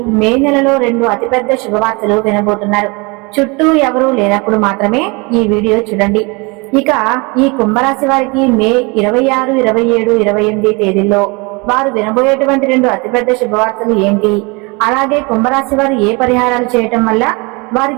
మే నెలలో 2 అతిపెద్ద శుభవార్తలు వినబోతున్నారు. చుట్టూ ఎవరూ లేనప్పుడు మాత్రమే ఈ వీడియో చూడండి. ఇక ఈ కుంభరాశి వారికి మే 26, 27, 28 తేదీల్లో వారు వినబోయేటువంటి 2 అతిపెద్ద శుభవార్తలు ఏంటి, అలాగే కుంభరాశి వారు ఏ పరిహారాలు చేయటం వల్ల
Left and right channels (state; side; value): quieter; left; 28.3 dB